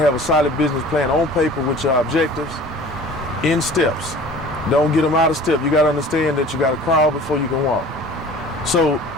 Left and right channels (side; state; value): both; normal; correlation 0.45